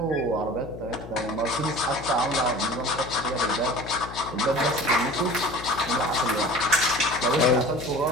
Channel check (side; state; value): left; noise; hum, 13 dB below the sound